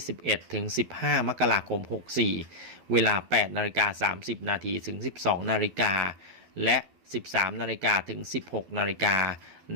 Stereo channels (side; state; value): left; late; 12 ms